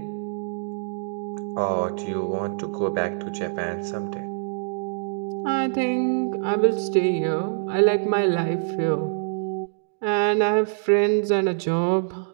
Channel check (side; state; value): left; silent; digital silence